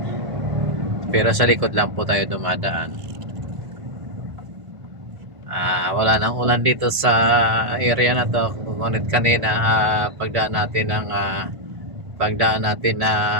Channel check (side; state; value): left; late; 1.5 ms